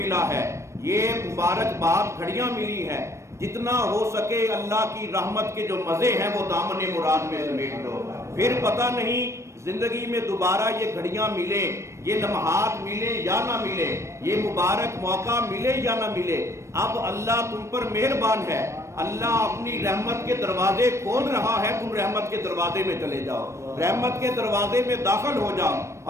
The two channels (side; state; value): left; late; 0.14 ms